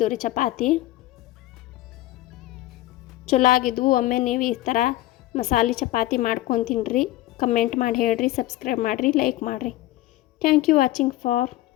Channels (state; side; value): quieter; right; 16.0 dB